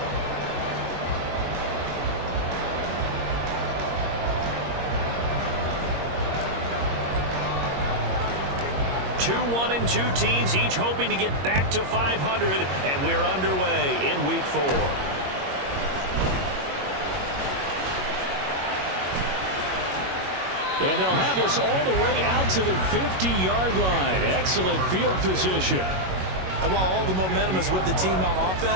Two 1-2 teams, each hoping to get back to 500, and we're underway in week 4. And they'll have this all the way out to the 50-yard line. Excellent field position. And while all the momentum is with the team on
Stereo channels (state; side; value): late; left; 21 ms